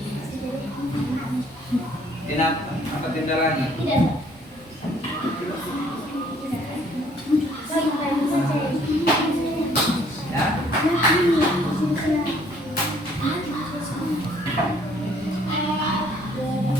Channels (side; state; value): both; normal; correlation 0.61